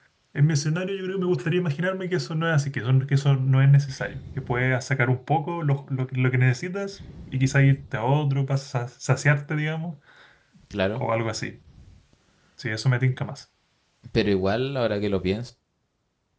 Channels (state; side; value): identical; both; correlation 1.00